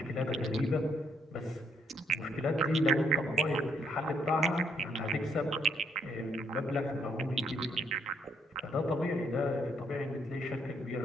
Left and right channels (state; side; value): normal; both; correlation 0.72